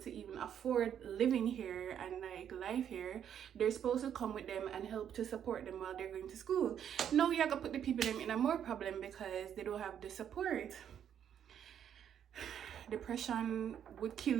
even afford living here and like life here, they're supposed to come with them and help to support them while they're going to school. No, you're gonna put the people them in a more problem because they don't have the support. Depression would kill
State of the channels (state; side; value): quieter; left; 9.2 dB